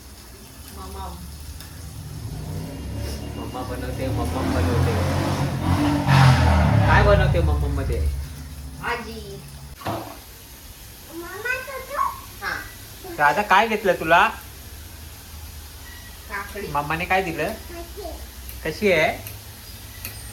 मम्मा बनवते. मम्मा बनवते. काय बनवते मम्मा मध्ये? भाजी. राधा काय घेतलं तुला? काकडी. मम्माने काय दिलं? कशी आहे?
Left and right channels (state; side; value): identical; both; correlation 1.00